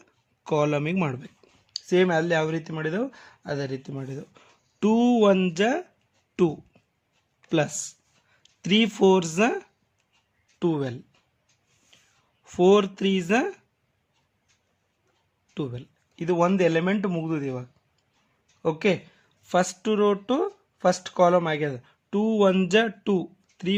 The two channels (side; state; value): both; identical; correlation 1.00